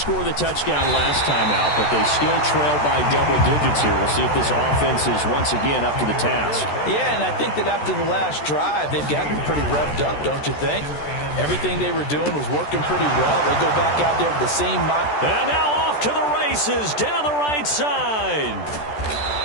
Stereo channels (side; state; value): right; late; 14 ms